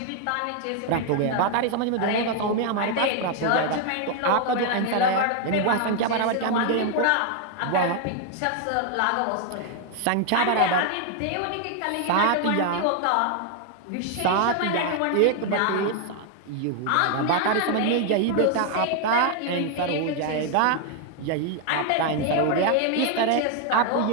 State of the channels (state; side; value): different; both; correlation 0.00